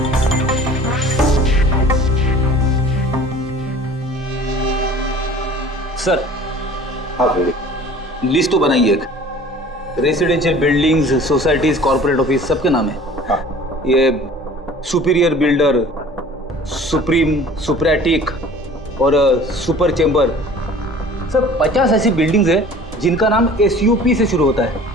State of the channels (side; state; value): both; normal; correlation 0.46